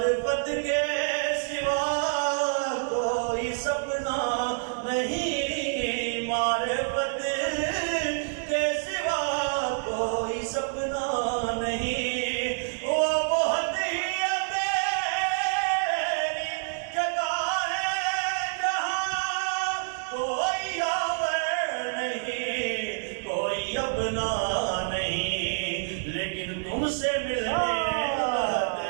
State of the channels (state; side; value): silent; left; digital silence